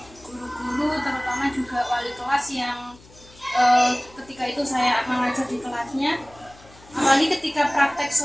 guru-guru, terutama juga wali kelas yang ketika itu saya mengajar di kelasnya. Apalagi ketika praktek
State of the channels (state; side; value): noise; left; hum, 24 dB below the sound